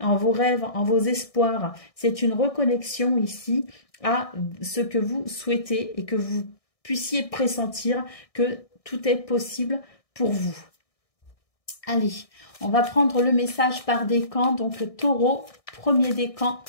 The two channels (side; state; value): right; late; 1.6 ms